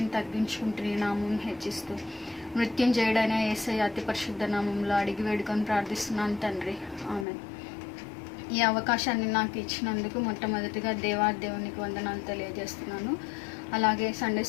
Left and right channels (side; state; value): right; drops out; at 7.2 s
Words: తగ్గించుకుంటూ నీ నామం హెచ్చిస్తూ మృత్యుంజయుడైన యేసయ్య అతి పరిశుద్ధ నామంలో అడిగి వేడుకొని ప్రార్థిస్తున్నాను తండ్రి, ఆమేన్. ఈ అవకాశాన్ని నాకు ఇచ్చినందుకు మొట్టమొదటిగా దేవునికి వందనాలు తెలియజేస్తున్నాను. అలాగే Sunday